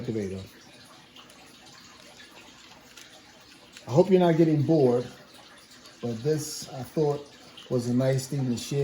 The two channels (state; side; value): identical; both; correlation 1.00